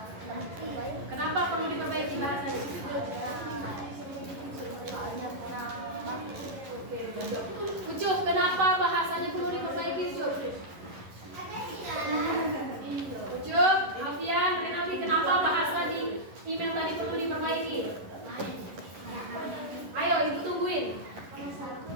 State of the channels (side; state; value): left; late; 11 ms